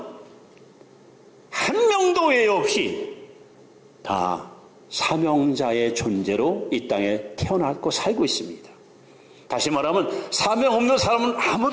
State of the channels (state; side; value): identical; both; correlation 1.00